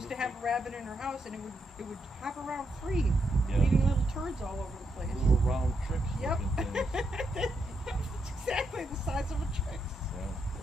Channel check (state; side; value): normal; both; correlation 0.81